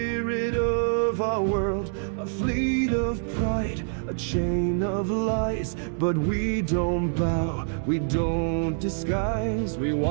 of our world. A fleet of pride, a chain of lies. But we don't bow, we don't disguise. We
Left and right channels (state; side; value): silent; left; digital silence